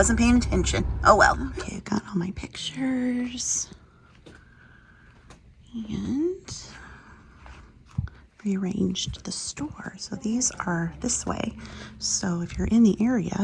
paying attention. Oh well. Okay, I got all my pictures and rearranged the store. So these are this way. So if you're in the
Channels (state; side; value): identical; both; correlation 1.00